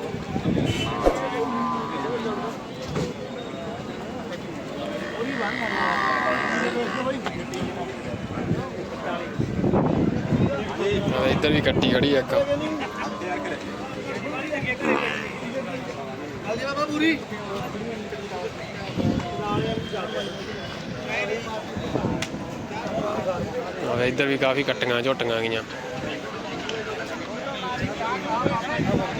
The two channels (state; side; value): identical; both; correlation 1.00